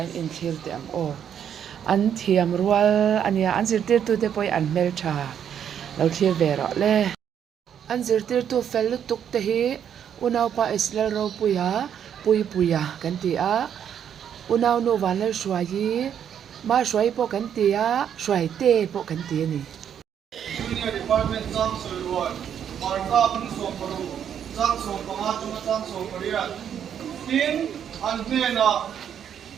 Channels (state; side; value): quieter; left; 8.9 dB